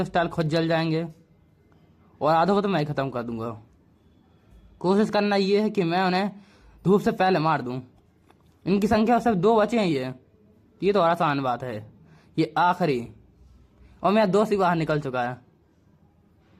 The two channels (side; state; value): both; identical; correlation 1.00